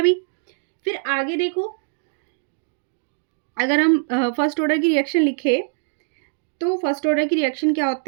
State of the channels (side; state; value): left; silent; digital silence